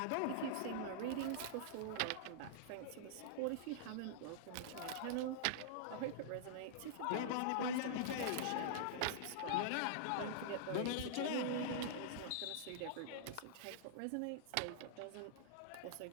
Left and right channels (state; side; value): different; both; correlation -0.02